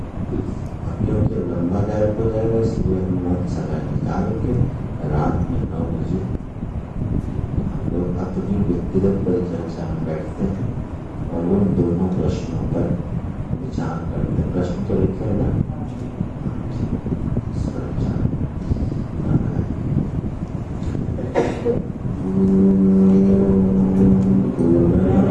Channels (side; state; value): both; identical; correlation 1.00